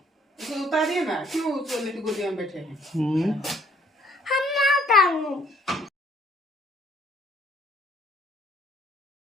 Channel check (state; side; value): normal; both; correlation 0.62